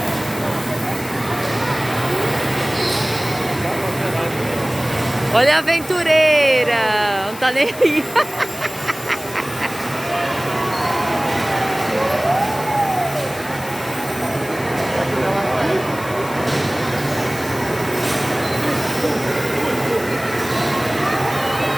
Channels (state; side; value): noise; left; hiss, 15 dB below the sound